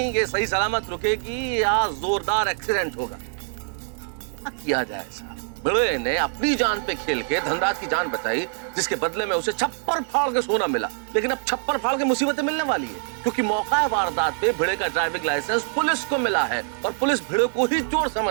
ये सही सलामत रुकेगी या जोरदार एक्सीडेंट होगा। क्या किया जाए साहब? भिड़े ने अपनी जान पे खेल के धनराज की जान बचाई, जिसके बदले में उसे छप्पर फाड़ के सोना मिला। लेकिन अब छप्पर फाड़ के मुसीबतें मिलने वाली है, क्योंकि मौका वारदात पे भिड़े का ड्राइविंग लाइसेंस पुलिस को मिला है और पुलिस भिड़े को ही चोर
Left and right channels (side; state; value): left; silent; 62 dB below the other